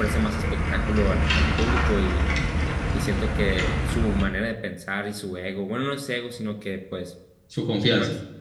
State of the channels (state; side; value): identical; both; correlation 1.00